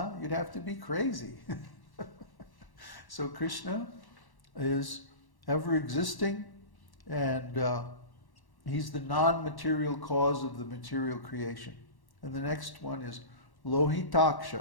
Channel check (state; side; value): late; right; 1.1 ms